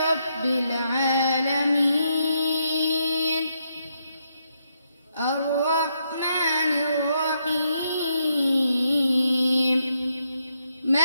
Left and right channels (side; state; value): both; inverted; correlation -0.78